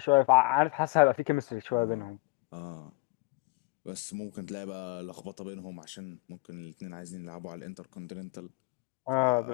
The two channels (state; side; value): quieter; right; 25.6 dB